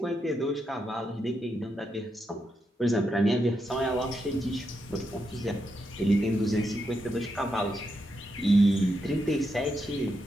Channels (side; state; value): both; normal; correlation 0.83